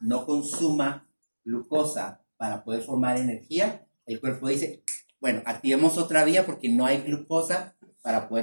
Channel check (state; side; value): inverted; both; correlation -1.00